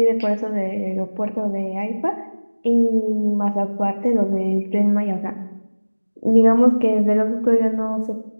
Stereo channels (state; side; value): inverted; both; correlation -1.00